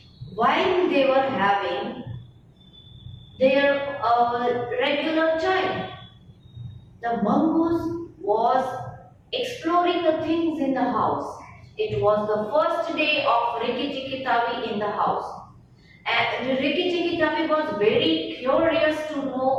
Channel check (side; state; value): both; identical; correlation 1.00